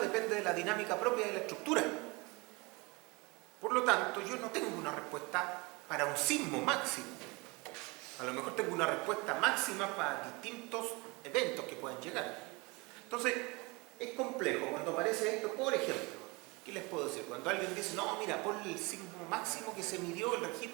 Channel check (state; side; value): quieter; left; 26.4 dB